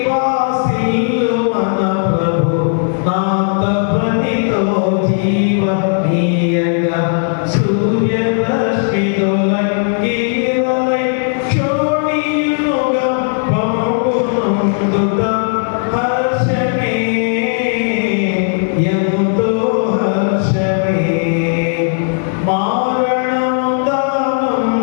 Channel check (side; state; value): right; silent; 59 dB below the other